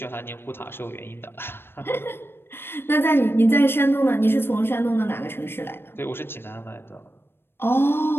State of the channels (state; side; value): late; right; 0.11 ms